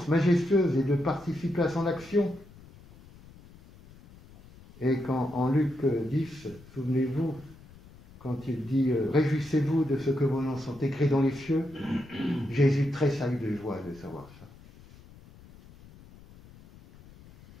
majestueuse et de participer à son action. Et quand en Luc 10, souvenez-vous, quand il dit « Réjouissez-vous de ce que vos noms sont écrits dans les cieux », Jésus tressaille de joie de savoir ça.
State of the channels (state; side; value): noise; left; rumble, 22 dB below the sound